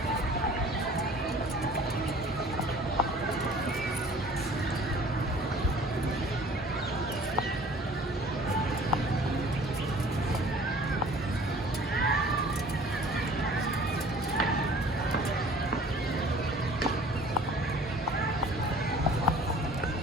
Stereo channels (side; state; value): both; normal; correlation 0.49